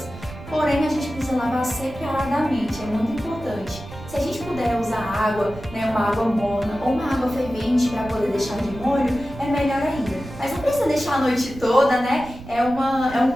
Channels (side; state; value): right; noise; rumble, 15 dB below the sound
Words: Porém, a gente precisa lavar separadamente, é muito importante. Se a gente puder usar água, né, uma água morna ou uma água fervente para poder deixar de molho, é melhor ainda. Mas não precisa deixar a noite toda, né? É um